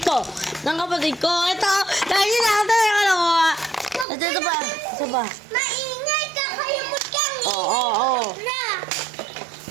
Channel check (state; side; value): drops out; left; at 4.0 s